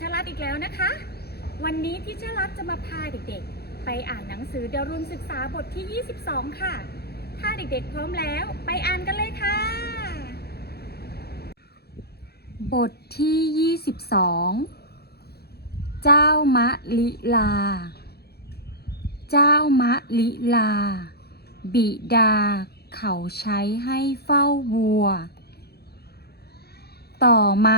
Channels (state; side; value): late; right; 0.46 ms